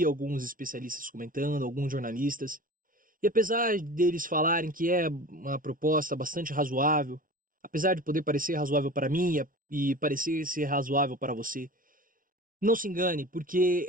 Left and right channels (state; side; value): late; left; 0.40 ms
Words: alguns especialistas comentando, alguns jornalistas, e apesar deles falarem que é uma proposta bastante razoável, apesar de poder parecer razoável para mim e parecer ser razoável para você, não se engane, porque